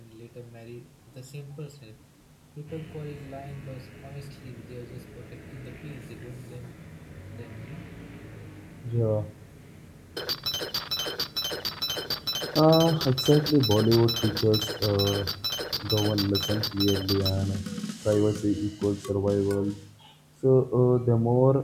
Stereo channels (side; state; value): both; identical; correlation 1.00